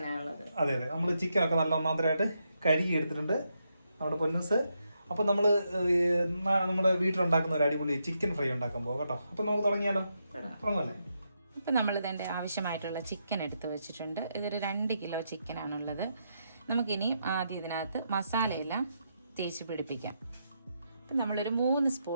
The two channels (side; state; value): both; inverted; correlation -0.81